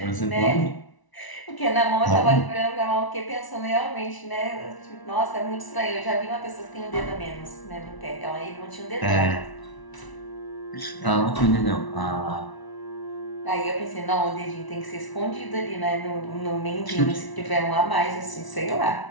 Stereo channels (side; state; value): right; late; 1.0 ms